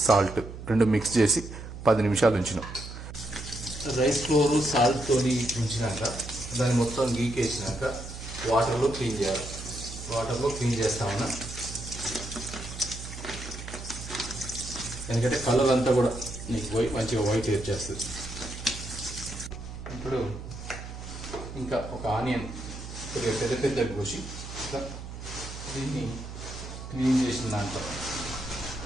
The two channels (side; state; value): right; noise; hum, 10 dB below the sound